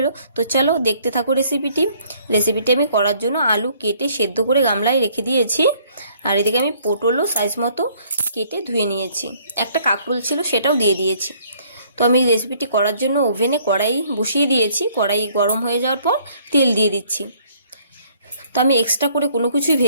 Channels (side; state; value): both; inverted; correlation -0.62